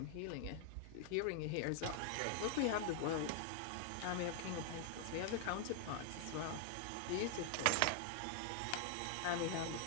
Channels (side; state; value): both; different; correlation 0.00